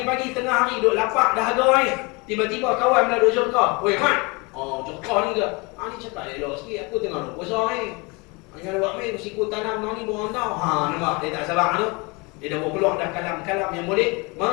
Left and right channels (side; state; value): right; quieter; 28.0 dB